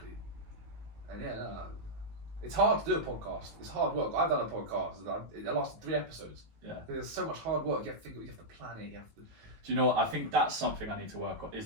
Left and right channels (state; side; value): late; left; 19 ms